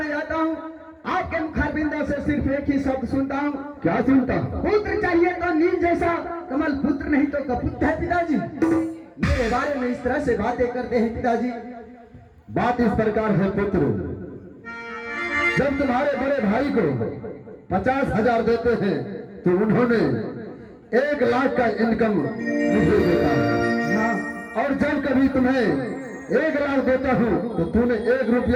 जाता हूँ आपके मुखारबिंदों से सिर्फ एक ही शब्द सुनता हूँ। क्या सुनता? पुत्र चाहिए तो नील जैसा, कमल पुत्र नहीं तो कपुत है पिताजी। मेरे बारे में इस तरह से बातें करते हैं पिताजी। बात इस प्रकार है पुत्र, जब तुम्हारे बड़े भाई को 50,000 देते हैं तो उन्होंने 1 लाख का इनकम मुझे देता है। हाँ। और जब कभी तुम्हें 1 लाख देता हूँ तो तूने 1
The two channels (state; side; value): identical; both; correlation 1.00